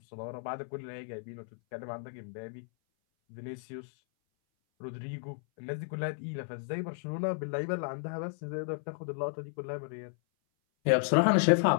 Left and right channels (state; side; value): silent; right; 56 dB below the other